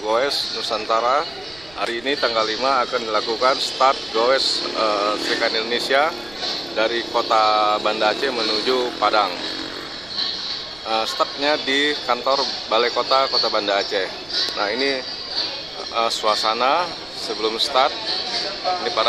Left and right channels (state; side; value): noise; right; rumble, 23 dB below the sound